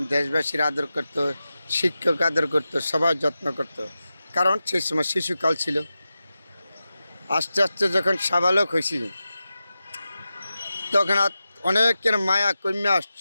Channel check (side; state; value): both; inverted; correlation -0.93